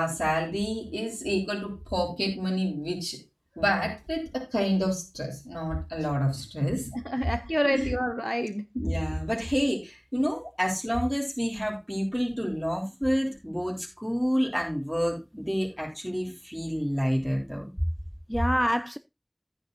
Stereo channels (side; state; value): both; identical; correlation 1.00